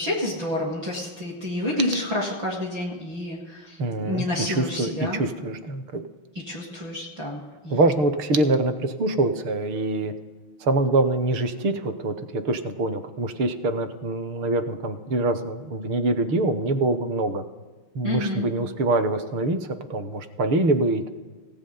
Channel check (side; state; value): left; late; 6.5 ms